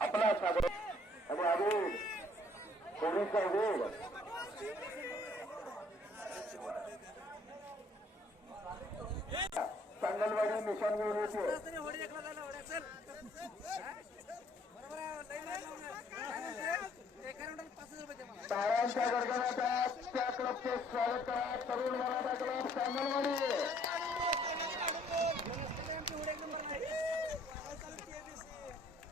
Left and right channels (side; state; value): both; normal; correlation 0.61